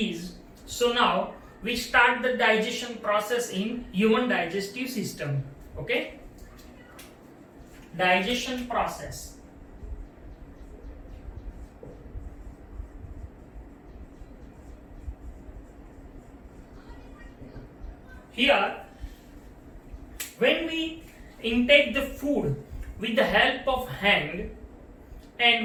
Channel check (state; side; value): identical; both; correlation 1.00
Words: So now we start the digestion process in human digestive system. Okay? Digestion process. Here, when we intake the food with the help of hand and